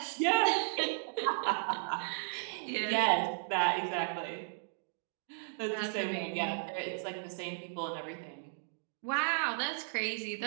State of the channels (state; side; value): silent; left; digital silence